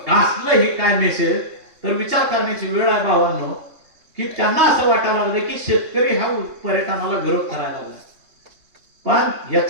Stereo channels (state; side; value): late; left; 3.2 ms